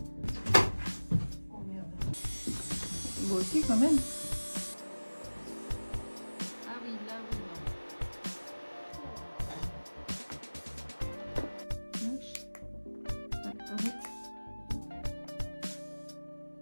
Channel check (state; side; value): inverted; both; correlation -1.00